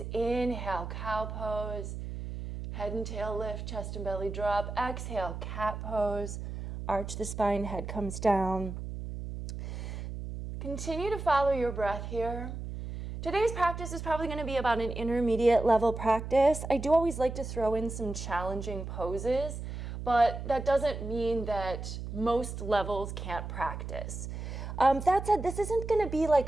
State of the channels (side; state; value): right; noise; hum, 7 dB below the sound